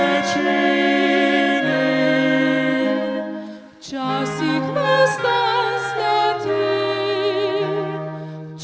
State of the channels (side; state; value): both; identical; correlation 1.00